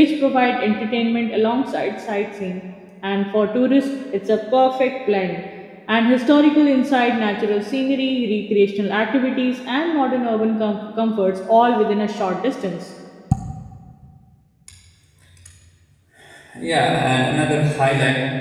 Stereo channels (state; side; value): identical; both; correlation 1.00